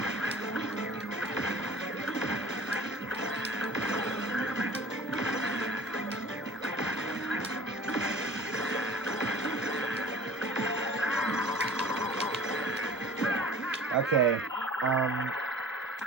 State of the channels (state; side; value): normal; both; correlation 0.46